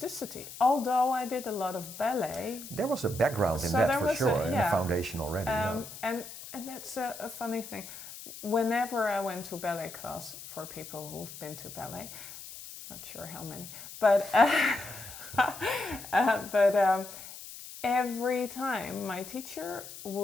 Although I did a lot of ballet. There was a background in that for sure, in the foundation already. And that's a funny thing. Whenever I went to ballet class, for people who've been to ballet, not sure how many, but every time my teacher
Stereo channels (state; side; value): noise; left; hiss, 13 dB below the sound